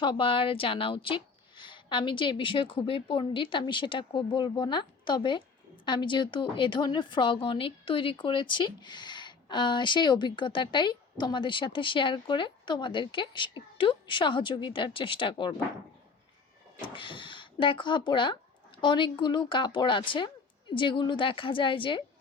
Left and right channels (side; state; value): right; quieter; 4.8 dB